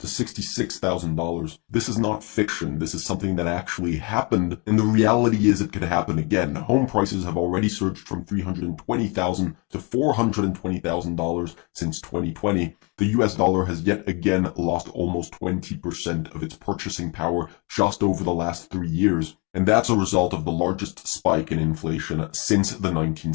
$66,000. This is not fiction. This is something that actually happened, and the reality is it could happen again. Home prices have already surged from $320,000 to $420,000 since 2020. The US dollar has yet again lost almost 20% of its purchasing power just over the last 3 years, and that's a result of the largest spike in inflation since the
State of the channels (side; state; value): right; quieter; 31.0 dB